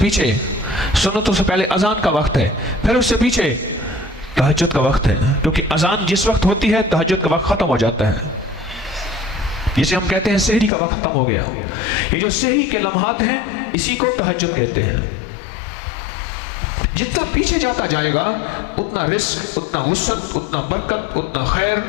سنتوں سے پہلے اذان کا وقت ہے، پھر اس سے پیچھے تہجد کا وقت ہے. کیونکہ اذان جس وقت ہوتی ہے تہجد کا وقت ختم ہو جاتا ہے، جسے ہم کہتے ہیں سحری کا وقت ختم ہو گیا. یہ جو سحری کے لمحات ہیں اسی کو تہجد کہتے ہیں. جتنا پیچھے جاتا جائے گا اتنا رزق، اتنا وسعت، اتنا برکت، اتنا خیر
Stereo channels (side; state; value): right; drops out; at 10.7 s